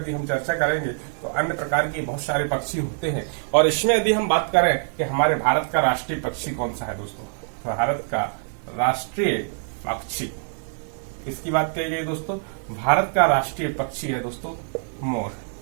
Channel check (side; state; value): left; silent; digital silence